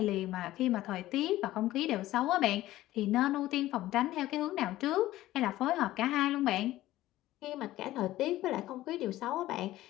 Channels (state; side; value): quieter; right; 15.5 dB